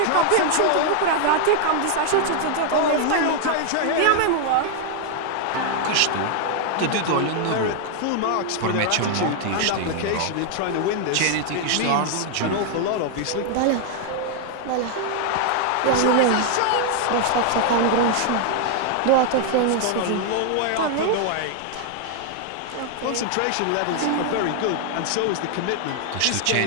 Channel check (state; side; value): different; both; correlation 0.00